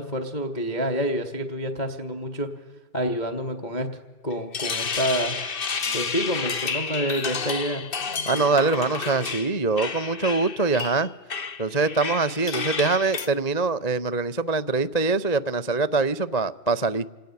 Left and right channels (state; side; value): late; right; 2.6 ms